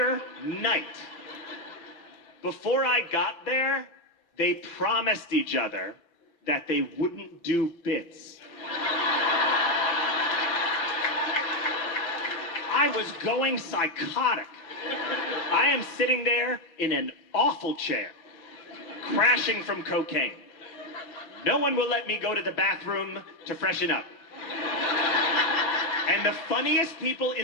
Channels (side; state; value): right; late; 6.0 ms